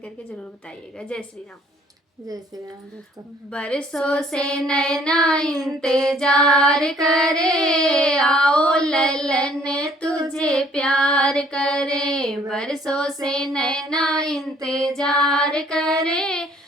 करके ज़रूर बताइएगा। जय श्री राम। जय श्री राम दोस्तों। बरसों से नैना इंतजार करे, आओ ललन तुझे प्यार करे। बरसों से नैना इंतजार करे,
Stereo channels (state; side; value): normal; both; correlation 0.59